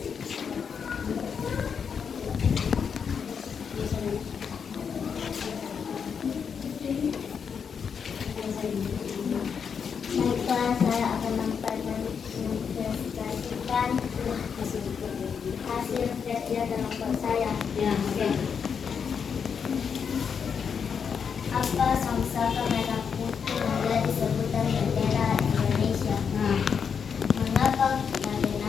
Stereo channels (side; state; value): right; quieter; 6.7 dB